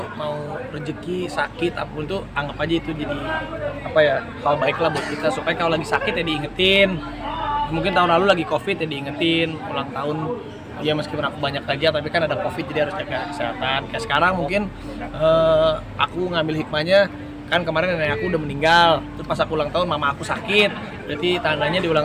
mau rezeki, sakit, apapun tuh anggap aja itu jadi apa ya, hal baik lah buat kita, supaya kalau lagi sakit ya diingetin. Mungkin tahun lalu lagi covid ya diingetin ulang tahun ya, meskipun aku banyak kerja tapi kan ada covid jadi harus jaga kesehatan. Kayak sekarang mungkin aku ngambil hikmahnya, kan kemarin nenek aku udah meninggal, terus pas aku ulang tahun mama aku sakit, berarti tandanya di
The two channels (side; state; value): both; identical; correlation 1.00